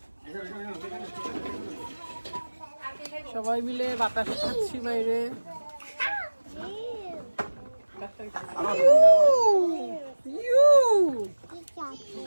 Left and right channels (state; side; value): inverted; both; correlation -1.00